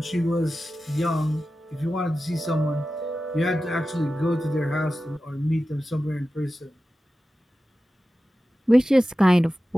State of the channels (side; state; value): both; normal; correlation 0.94